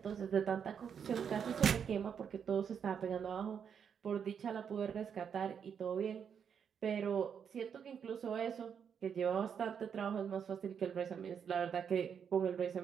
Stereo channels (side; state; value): left; quieter; 7.4 dB